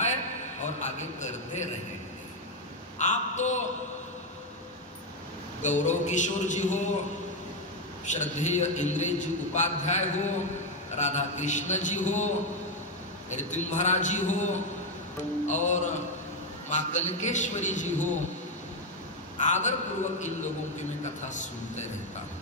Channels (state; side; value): normal; both; correlation 0.05